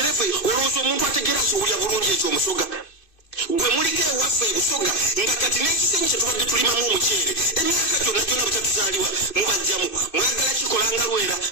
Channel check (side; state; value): right; late; 2.6 ms